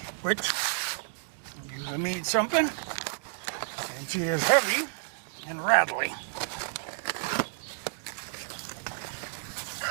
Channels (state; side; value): silent; left; digital silence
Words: which usually means something, and she is heavy and rattly.